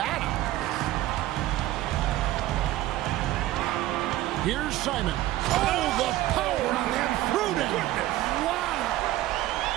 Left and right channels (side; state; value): left; quieter; 15.3 dB